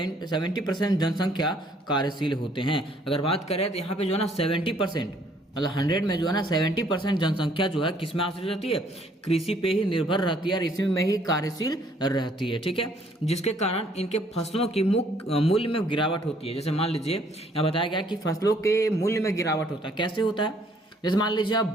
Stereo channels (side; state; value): both; normal; correlation 0.63